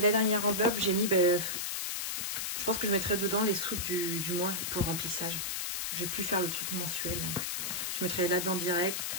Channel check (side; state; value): left; noise; hiss, 2 dB below the sound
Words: dernière enveloppe, j'ai mis, je pense que je mettrai dedans les sous du mois pour le remplissage. J'ai pu faire le truc mensuel. Je mettrai là-dedans direct.